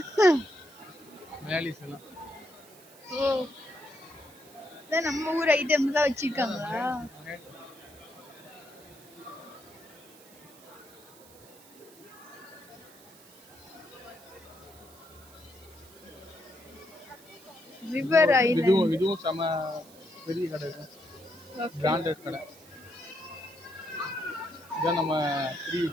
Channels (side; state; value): right; noise; hiss, 22 dB below the sound